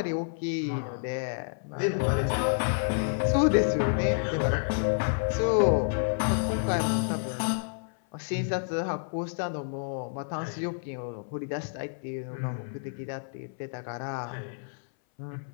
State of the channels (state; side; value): silent; right; 58 dB below the other